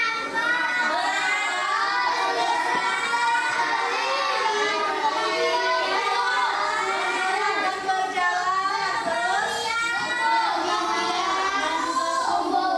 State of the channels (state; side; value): identical; both; correlation 1.00